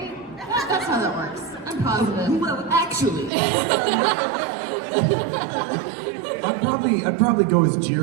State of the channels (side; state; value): left; drops out; at 3.3 s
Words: That's how that works. I'm positive. Well, actually. I'd probably go as